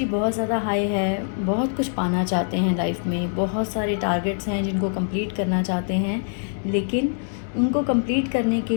बहुत ज़्यादा high है, बहुत कुछ पाना चाहते हैं life में, बहुत सारे टारगेट्स हैं जिनको कंप्लीट करना चाहते हैं, लेकिन उनको कंप्लीट करने के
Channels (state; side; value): silent; right; 63 dB below the other